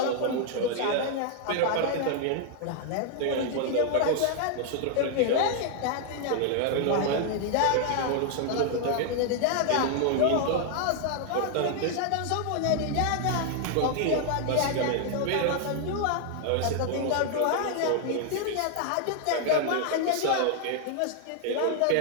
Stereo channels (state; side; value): different; both; correlation 0.00